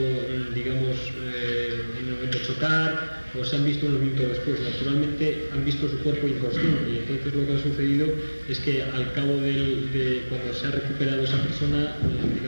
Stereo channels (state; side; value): inverted; both; correlation -1.00